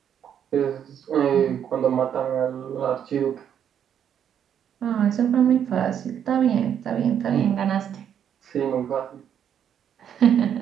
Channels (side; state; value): left; quieter; 9.0 dB